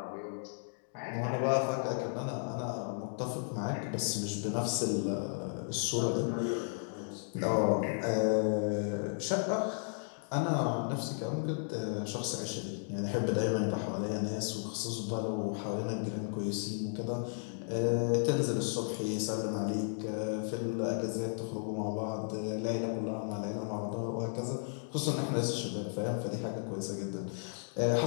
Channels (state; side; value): silent; right; digital silence